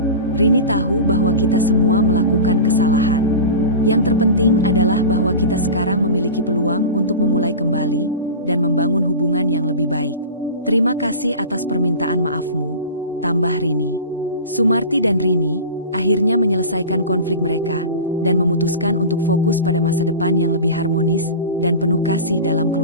Rini tahu bahwa kita semua melakukan kesalahan. Yang terpenting adalah bahwa kita sekarang memiliki peluang untuk memulai kembali dan membangun hubungan yang lebih baik. Terima kasih atas permintaan maafmu, tambah Rini. Sumarti dan Rini akhirnya menyelesaikan konflik mereka dan memutuskan untuk fokus pada masa depan yang lebih harmonis dan penuh kasih dalam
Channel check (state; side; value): inverted; both; correlation -0.31